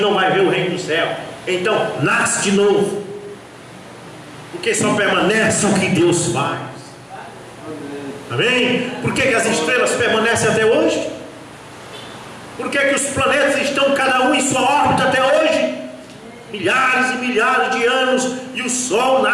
não vai ver o reino do céu. Então nasce de novo, porque só permanece o que Deus faz. Amém? Por que as estrelas permanecem até hoje? Por que os planetas estão cada um em sua órbita até hoje? Milhares e milhares de anos, e o sol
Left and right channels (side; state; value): both; identical; correlation 1.00